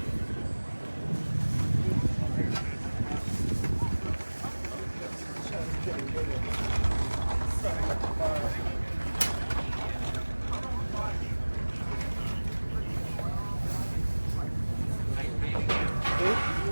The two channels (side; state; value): both; inverted; correlation -1.00